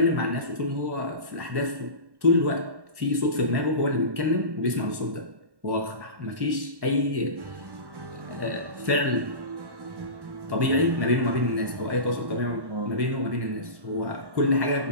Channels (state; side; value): late; left; 1.1 ms